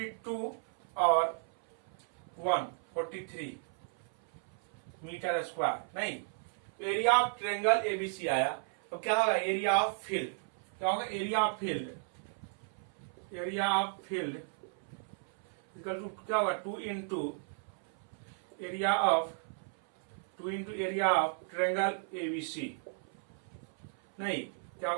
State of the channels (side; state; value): left; silent; 55 dB below the other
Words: और 1 43 मीटर स्क्वायर, नहीं एरिया ऑफ ट्रेंगल एबीसी आया। तो क्या होगा, एरिया ऑफ फील्ड, क्या होगा area of field, area of field equal to क्या होगा 2 into area of triangle ABC, नहीं क्या